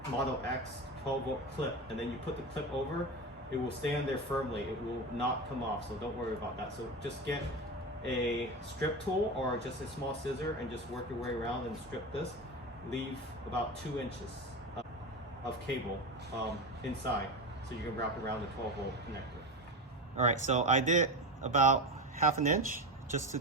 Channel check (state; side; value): normal; both; correlation 0.21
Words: Model X 12-volt clip. And then you put the clip over, it will stay on there firmly. It will not come off, so don't worry about that. So just get a strip tool or just a small scissor and just work your way around and strip this. Leave about 2 inches of cable inside, so you can wrap around the 12-volt connector. All right, so I did about ½ an inch just